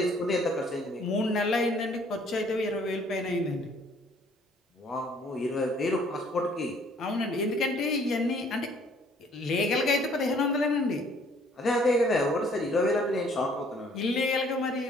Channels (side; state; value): both; normal; correlation 0.60